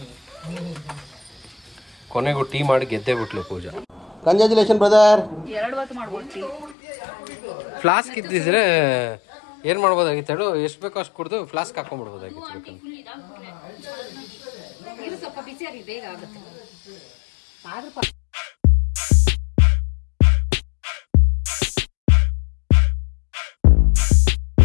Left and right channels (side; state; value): right; drops out; at 6.8 s